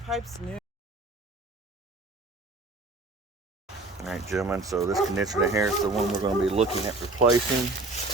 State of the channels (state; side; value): quieter; left; 3.0 dB